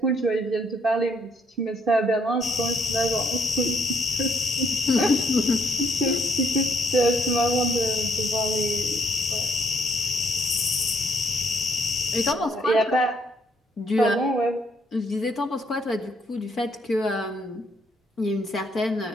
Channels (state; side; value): normal; both; correlation 0.69